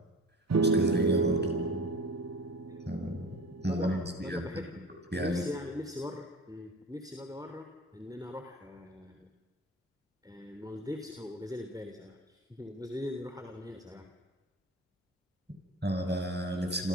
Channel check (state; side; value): normal; both; correlation 0.36